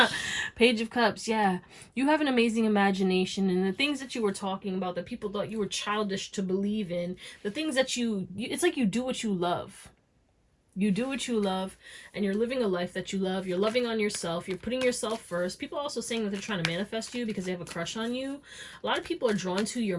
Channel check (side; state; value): both; identical; correlation 1.00